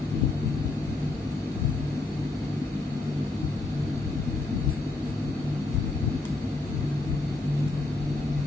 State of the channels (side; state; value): right; quieter; 3.2 dB